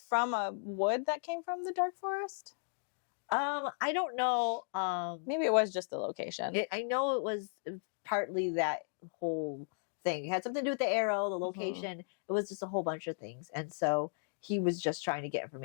a wood that came from the dark forest? I don't know. Maybe it was just the location. I know it was partly that whole thing. It had something to do with the arrow, the location. It was just a whole bunch of things. And so he was just trying to get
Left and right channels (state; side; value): silent; right; digital silence